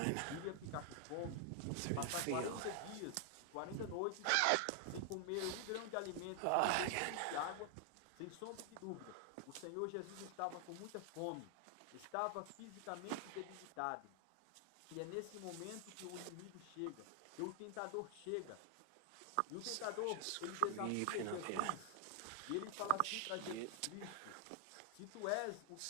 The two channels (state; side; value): different; both; correlation 0.00